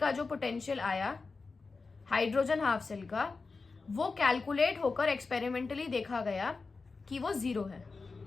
जो पोटेंशियल आया हाइड्रोजन हाफ सेल का, वो कैलकुलेट होकर एक्सपेरिमेंटली देखा गया कि वो 0 है।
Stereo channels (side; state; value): right; quieter; 4.2 dB